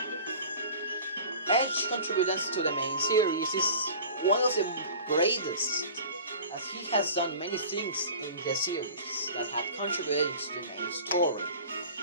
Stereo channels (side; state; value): both; inverted; correlation -0.40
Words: Edge's contributions to the main series is one of the greatest, as he has done many things in the series that have contributed to the main story.